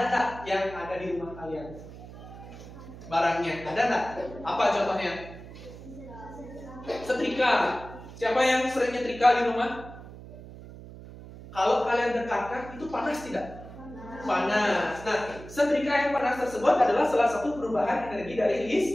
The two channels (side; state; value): right; noise; hum, 15 dB below the sound